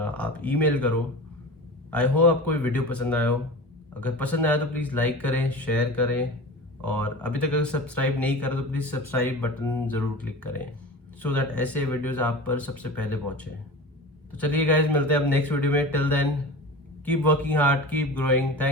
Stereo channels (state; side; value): normal; both; correlation 0.34